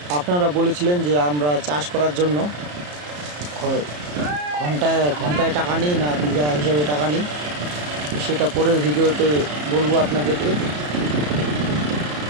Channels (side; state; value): left; late; 34 ms